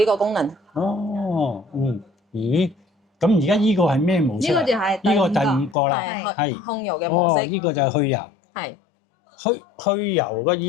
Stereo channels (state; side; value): drops out; right; at 5.8 s